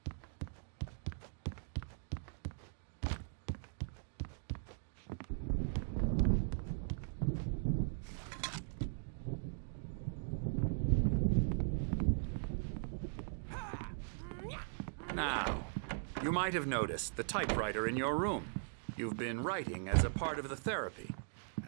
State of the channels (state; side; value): silent; left; digital silence